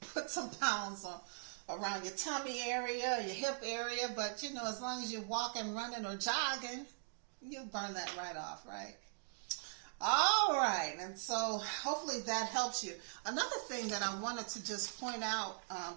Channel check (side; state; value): left; silent; digital silence